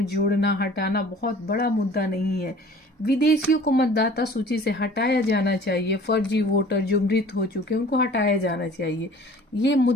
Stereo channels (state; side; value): normal; both; correlation 0.48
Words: जोड़ना हटाना बहुत बड़ा मुद्दा नहीं है। विदेशियों को मतदाता सूची से हटाया जाना चाहिए, फर्जी वोटर जो मृत हो चुके हैं उनको हटाया जाना चाहिए, ये